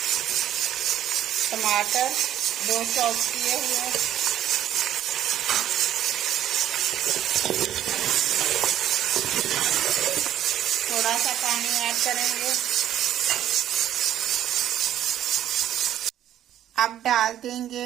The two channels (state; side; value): quieter; left; 11.5 dB